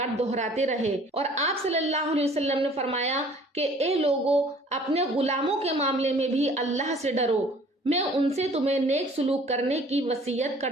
دہراتے رہے۔ اور آپ صلی اللہ علیہ وسلم نے فرمایا کہ اے لوگو، اپنے غلاموں کے معاملے میں بھی اللہ سے ڈرو، میں ان سے تمہیں نیک سلوک کرنے کی وصیت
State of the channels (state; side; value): normal; both; correlation 0.53